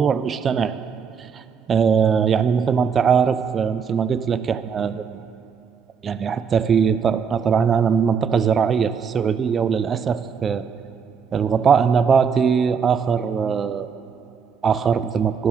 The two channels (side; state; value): left; quieter; 6.5 dB